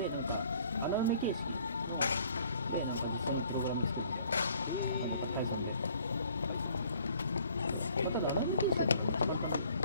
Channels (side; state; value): both; inverted; correlation -0.58